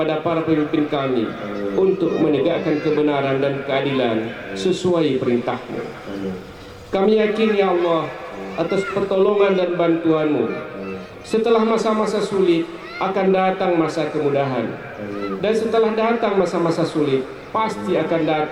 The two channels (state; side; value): identical; both; correlation 1.00